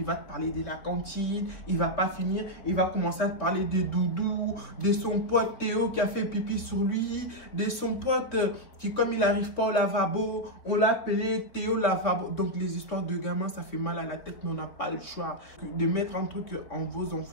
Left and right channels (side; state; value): right; late; 3.8 ms